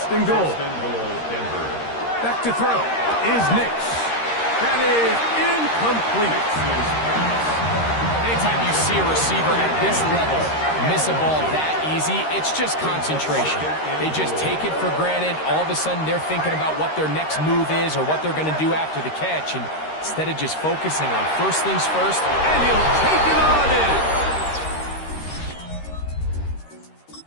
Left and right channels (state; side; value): late; right; 13 ms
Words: and goal. Back to throw is Nix. That is incomplete. Anytime you see a receiver at this level miss a ball that easy, it's just concentration. They just take it for granted. All of a sudden, they're thinking about what their next move is or what they're going to do after the catch. And instead of just focusing on first things first, and he'll take it on in.